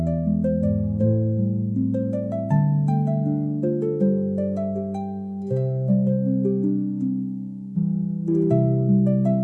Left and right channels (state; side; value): identical; both; correlation 1.00